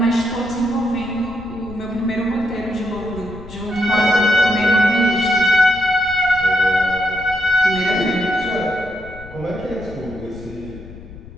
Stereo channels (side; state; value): left; noise; rumble, 16 dB below the sound